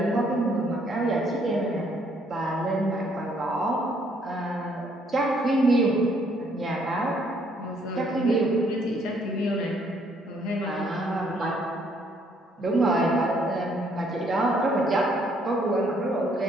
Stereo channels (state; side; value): normal; both; correlation 0.67